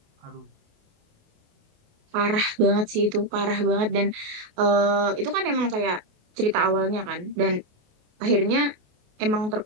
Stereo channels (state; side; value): late; left; 28 ms